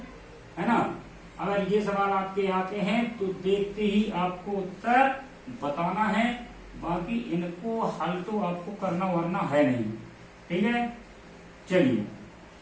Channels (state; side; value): identical; both; correlation 1.00